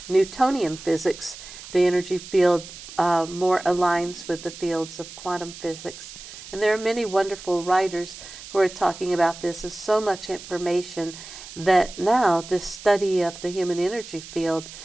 Newtonian physics. The energy field more aligns with the fields of quantum physics. And there are many wonderful writers who are talking about this. There's so much information that now this study of the human energy field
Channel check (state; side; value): noise; right; hiss, 14 dB below the sound